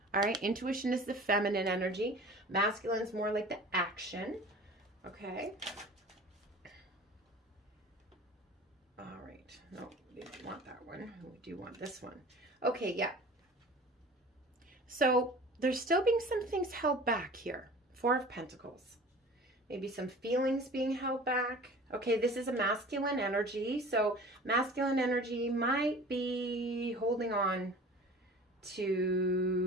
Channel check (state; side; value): normal; both; correlation 0.42